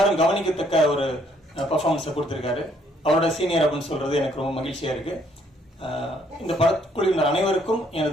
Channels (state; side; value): normal; both; correlation 0.67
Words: கவனிக்கத்தக்க ஒரு பர்ஃபார்மன்ஸை கொடுத்திருக்காரு. அவரோட சீனியர் அப்படின்னு சொல்றது எனக்கு ரொம்ப மகிழ்ச்சியா இருக்கு. இந்த படக்குழுவினர் அனைவருக்கும்